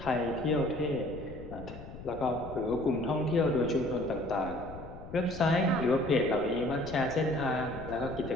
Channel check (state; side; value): noise; left; rumble, 13 dB below the sound